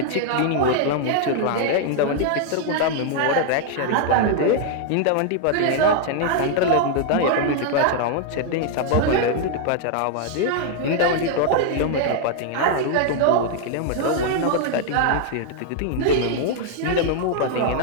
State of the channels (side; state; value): both; different; correlation 0.00